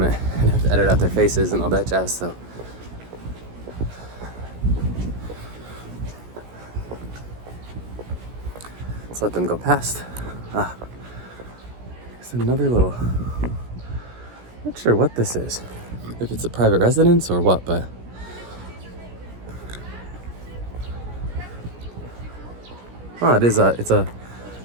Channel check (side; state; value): left; late; 17 ms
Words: and have to edit out their faces and all that jazz. So let's let them go past. It's another little, not sure what this is, if it's a private residence or what, but